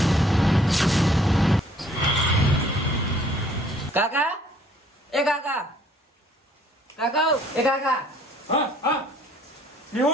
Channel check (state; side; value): normal; both; correlation 0.59